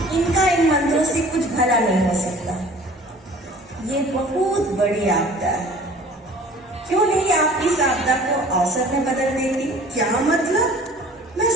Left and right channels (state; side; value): normal; both; correlation 0.48